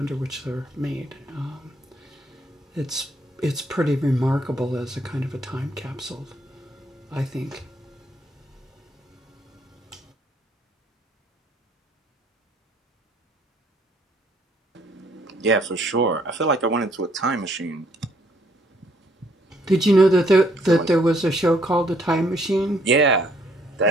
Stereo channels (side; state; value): both; normal; correlation 0.66